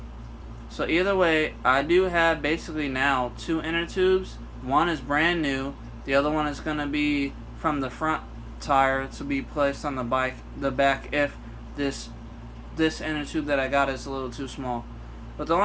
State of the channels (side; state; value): both; identical; correlation 1.00